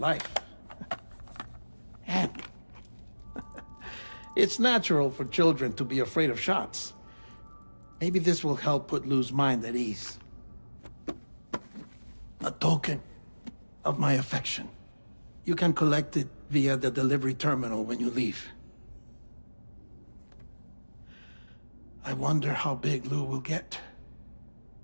And it's natural for children to be afraid of shots. Maybe this will help put Lou's mind at ease. A token of my affection. You can collect it via the delivery terminal when you leave. I wonder how big Lou will get.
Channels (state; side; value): inverted; both; correlation -1.00